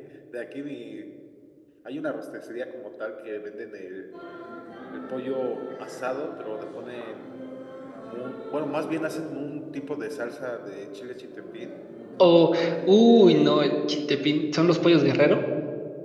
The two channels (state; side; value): identical; both; correlation 1.00